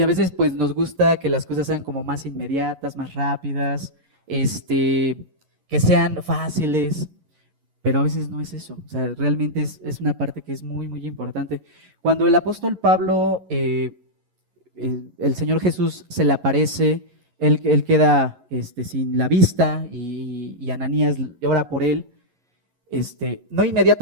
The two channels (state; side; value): late; left; 11 ms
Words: a veces pues nos gusta que las cosas sean como más inmediatas, más rápidas, que sean fáciles, pero a veces no es eso. O sea, realmente es una parte que es muy, muy importante. Cuando el apóstol Pablo, el Señor Jesús se le aparece, él queda sin la vista y Ananías ora por él. No